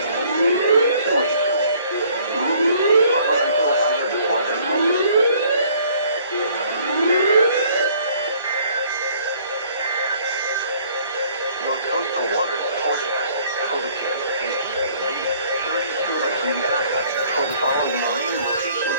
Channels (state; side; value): inverted; both; correlation -0.59